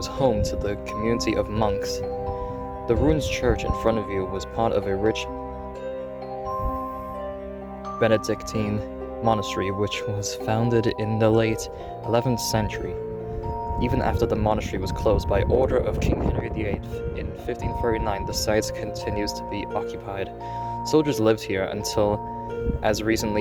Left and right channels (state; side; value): identical; both; correlation 1.00